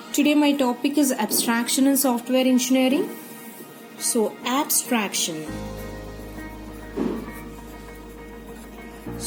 today my topic is abstraction in software engineering. So abstraction.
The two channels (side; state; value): both; identical; correlation 1.00